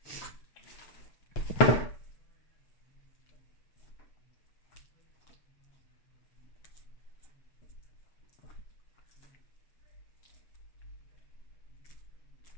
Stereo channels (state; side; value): late; right; 8.1 ms